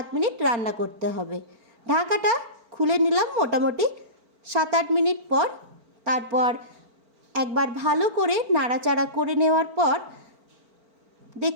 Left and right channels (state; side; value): late; left; 4.4 ms